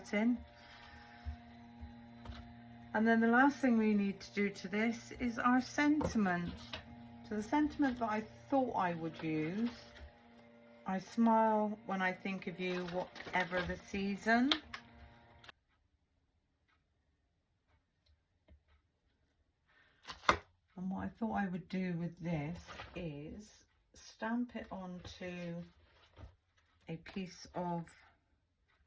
And then the last thing we need to do to this is our sentiment. So the sentiment that I thought I would use, I smile when I think of you, whatever the season. And what I thought I would do with this is stamp it onto a piece of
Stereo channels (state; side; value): identical; both; correlation 1.00